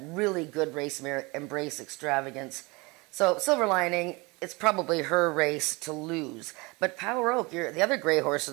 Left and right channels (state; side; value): quieter; left; 25.7 dB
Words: really good race mare, Embrace Extravagance. So Silver Lining, it's probably her race to lose. But Power Oak, the other gray horse